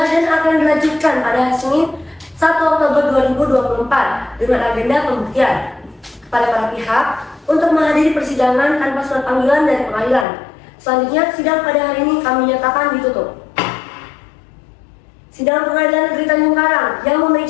dan akan dilanjutkan pada hari Senin 1 Oktober 2024 dengan agenda pembuktian kepada para pihak untuk menghadiri persidangan tanpa surat panggilan dari pengadilan. Selanjutnya sidang pada hari ini kami nyatakan ditutup. Sidang Pengadilan Negeri Tanjung Karang yang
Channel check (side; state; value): right; drops out; at 10.2 s